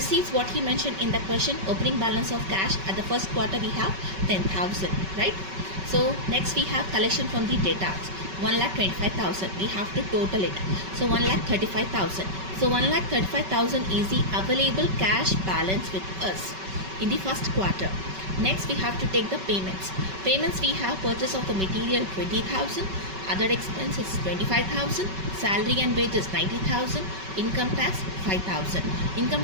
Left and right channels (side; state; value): left; late; 5.3 ms